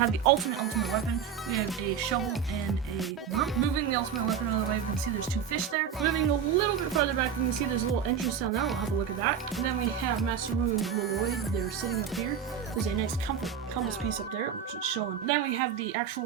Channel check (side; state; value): left; quieter; 7.8 dB